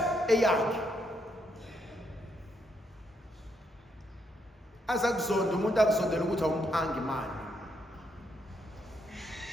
eyakhe. Azakuzonda umuntu akuzondela ukuthi awumphangi imali.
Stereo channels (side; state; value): both; normal; correlation 0.76